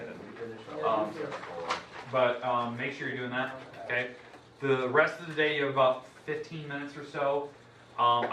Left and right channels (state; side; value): identical; both; correlation 1.00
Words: didn't. But make sure you're doing that, okay? The rest of the day, you have about 15 minutes or so.